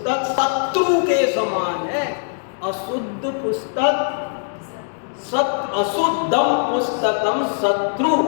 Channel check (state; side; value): silent; right; digital silence